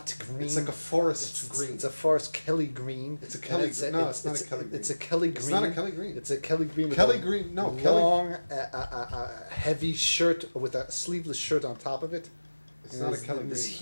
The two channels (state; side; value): inverted; both; correlation -1.00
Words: green. It's like a forest green. It's a forest Kelly green. It's a Kelly. No, it's not a Kelly green. It's a Kelly green. It's not a Kelly green. It's a Kelly green. With Kelly a green. No, long, heavy shirt with a sleeveless shirt on top of it. It's not a Kelly in green. this